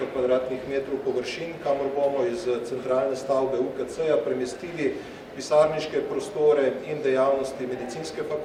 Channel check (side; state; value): both; identical; correlation 1.00